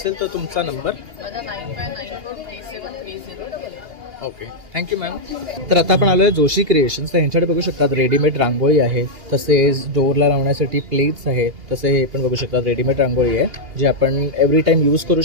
तर तुमचा नंबर? माझा 9594373088. ओके. Thank you ma'am. तर आता आपण आलो आहे जोशी क्रिएशन्स. तर ह्यांच्याकडे बघू शकतात रेडीमेड रांगोळी आहे, तसेच डोअरला लावण्यासाठी प्लेट्स आहेत. तसे हे पण बघू शकतात रेडीमेड रांगोळी आहे जे आपण एव्हरी टाइम यूज करू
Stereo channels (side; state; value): left; late; 2.8 ms